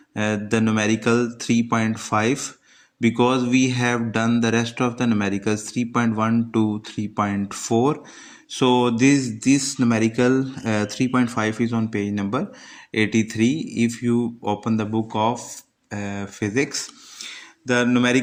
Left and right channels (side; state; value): both; identical; correlation 1.00